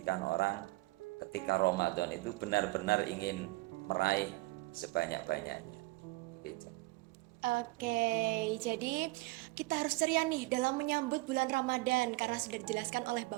orang ketika Ramadan itu benar-benar ingin meraih sebanyak-banyaknya. Begitu. Oke, jadi kita harus ceria nih dalam menyambut bulan Ramadan karena sudah dijelaskan oleh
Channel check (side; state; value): left; quieter; 21.5 dB